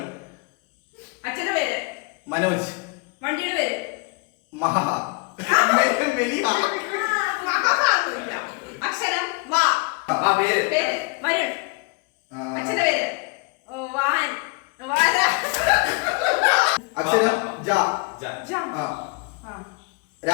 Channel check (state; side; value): quieter; right; 29.2 dB